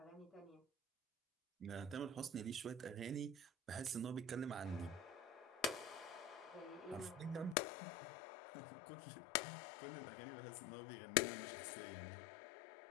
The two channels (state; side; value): drops out; right; at 7.6 s